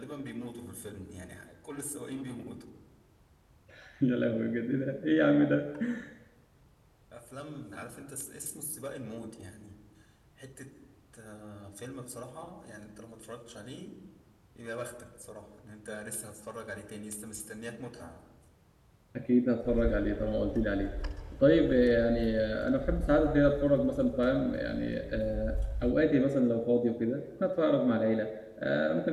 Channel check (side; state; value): both; identical; correlation 1.00